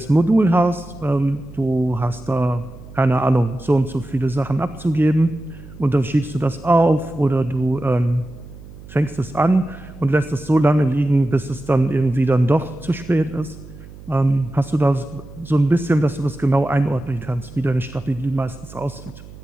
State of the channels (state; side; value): noise; right; hum, 18 dB below the sound